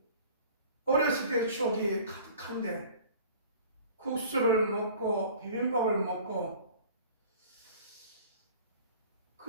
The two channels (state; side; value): inverted; both; correlation -0.46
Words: 어렸을 때의 추억이 가득한데, 국수를 먹고 비빔밥을 먹고,